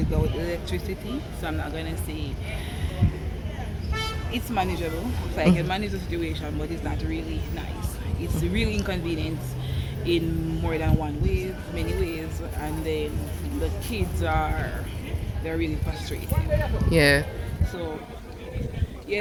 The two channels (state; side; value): identical; both; correlation 1.00